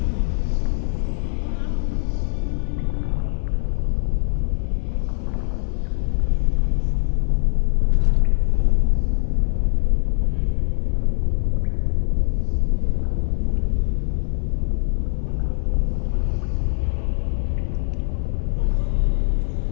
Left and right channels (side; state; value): right; silent; 59 dB below the other